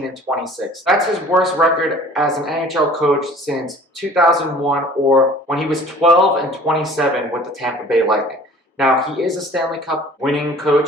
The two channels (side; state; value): both; normal; correlation 0.48